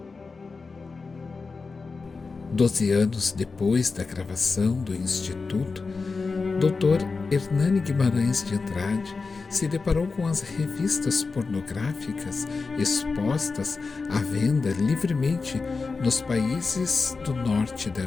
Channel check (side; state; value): right; quieter; 4.4 dB